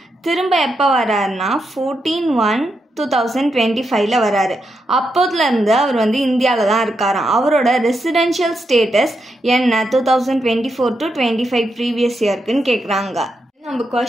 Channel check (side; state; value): both; normal; correlation 0.84